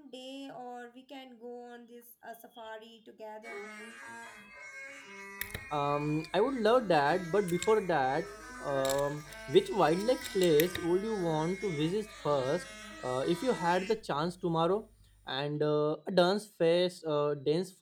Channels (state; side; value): identical; both; correlation 1.00